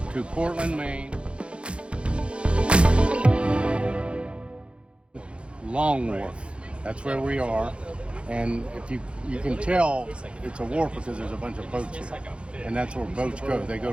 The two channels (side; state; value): left; late; 0.058 ms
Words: to Portland, Maine. Long Wharf. That's where we are. And if you can tell it's a wharf because there's a bunch of boats here. And that's where boats go. They go